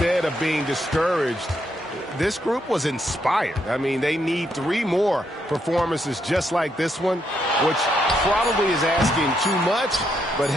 of being discouraged, this group was inspired. I mean, they need 3 more performances just like this one, which probably is asking too much, but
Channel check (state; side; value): normal; both; correlation 0.77